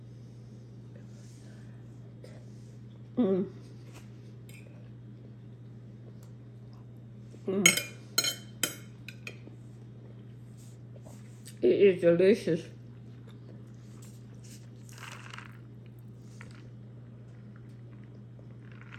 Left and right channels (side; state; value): both; identical; correlation 1.00